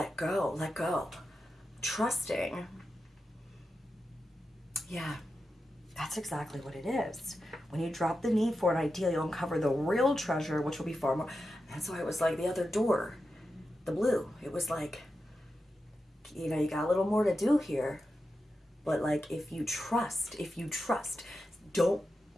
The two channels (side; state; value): both; normal; correlation 0.90